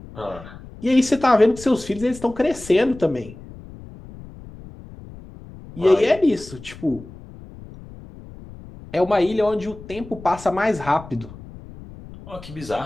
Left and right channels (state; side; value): noise; left; rumble, 17 dB below the sound